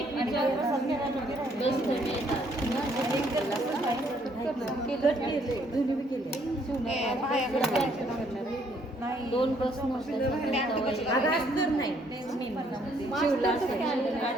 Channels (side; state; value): both; normal; correlation 0.67